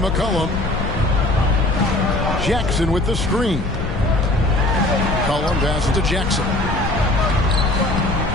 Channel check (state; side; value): noise; left; rumble, 7 dB below the sound